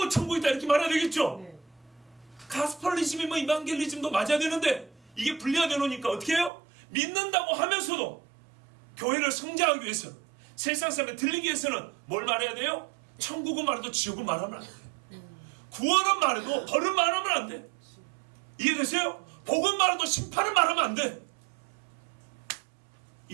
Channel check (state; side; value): drops out; left; at 6.5 s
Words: 천국 있다, 이렇게 말해야 되겠죠. 가스펠리즘이 뭐 이반겔리즘도 맞아야 되는데 이게 분리가 되놓으니까 어떻게 해요? 믿는다고 하면서도 교회를 성장하기 위해서, 세상 사람에 들리기 위해서는 뭘 말해야 돼요? 천국은 말해도 지옥은 말하면 안 돼. 구원은 말해도 벌은 말하면 안 돼. 이해되세요? 복은 말해도 심판은 말하면 안 돼.